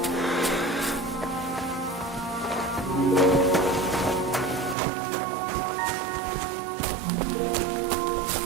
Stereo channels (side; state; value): left; drops out; at 4.8 s